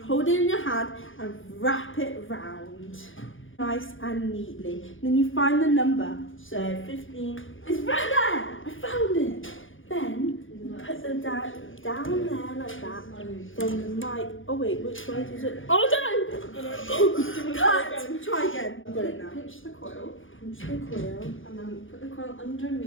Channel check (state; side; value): late; right; 0.58 ms